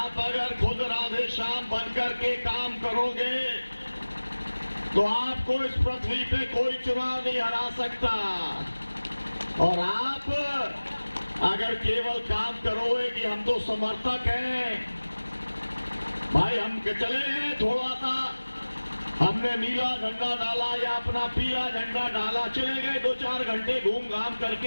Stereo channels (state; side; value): inverted; both; correlation -1.00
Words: अगर खुद राधे श्याम बनकर के काम करोगे तो आपको इस पृथ्वी पे कोई चुनाव नहीं हरा सकता। और आप अगर केवल काम करोगे कि हम तो समर्थक हैं, भाई हम चले गए, थोड़ा सा हमने नीला झंडा डाला या अपना पीला झंडा डाला, चले गए, 2-4 घंटे घूम घाम